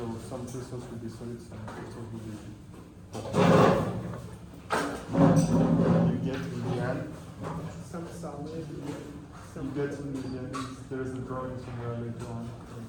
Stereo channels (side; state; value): both; identical; correlation 1.00